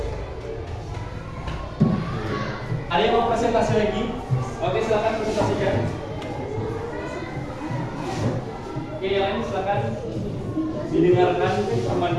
Ada yang mau presentasi lagi? Oke, silakan presentasikan. Oke, yang lain silakan didengarkan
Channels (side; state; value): both; identical; correlation 1.00